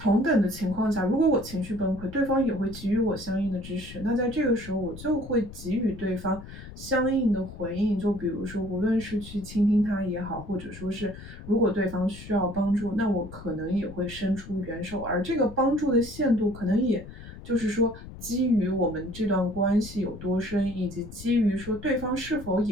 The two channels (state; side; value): noise; left; rumble, 14 dB below the sound